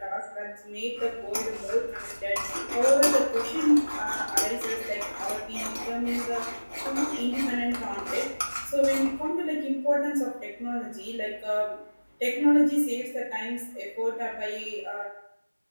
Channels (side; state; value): both; inverted; correlation -1.00